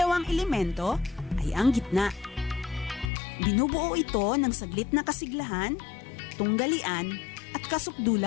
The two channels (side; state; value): right; drops out; at 3.1 s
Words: elemento ay ang gitna. Binubuo ito ng saglit na kasiglahan, tunggalian at